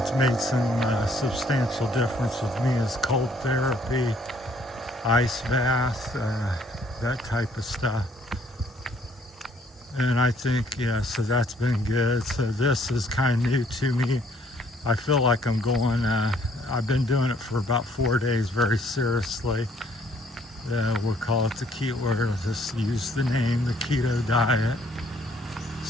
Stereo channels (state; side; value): normal; both; correlation 0.64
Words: made some substantial difference with me is cold therapy, ice bath, that type of stuff. And I think, so that's been good. So this is kind of new to me. I feel like I'm going, I've been doing it for about 4 days very seriously. We'll call it the keto, or just use the name, the keto diet.